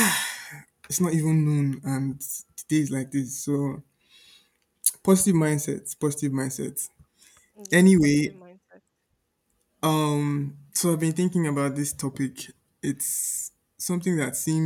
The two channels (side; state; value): both; identical; correlation 1.00